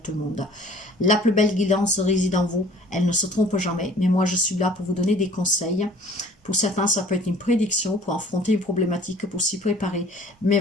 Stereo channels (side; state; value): both; normal; correlation 0.51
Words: le monde. La plus belle guidance réside en vous, elle ne se trompe jamais, mais moi je suis là pour vous donner des conseils. Pour certains, ça peut être une prédiction pour affronter une problématique, pour s'y préparer. Mais